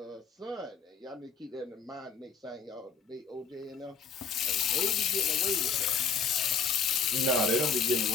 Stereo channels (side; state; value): right; quieter; 5.4 dB